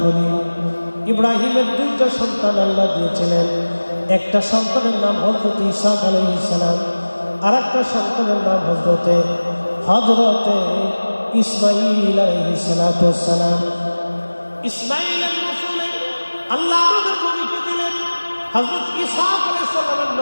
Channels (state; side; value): inverted; both; correlation -1.00